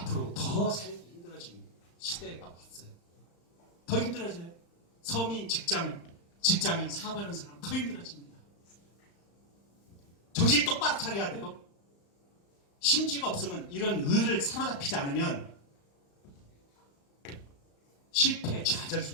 더 살기 힘들어지는 시대가 왔어요. 더 힘들어져요. 서민, 직장인, 사업하는 사람 더 힘들어집니다. 정신 똑바로 차려야 돼요. 심지가 없으면 이런 의를 사로잡히지 않으면 실패, 좌절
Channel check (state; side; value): late; right; 35 ms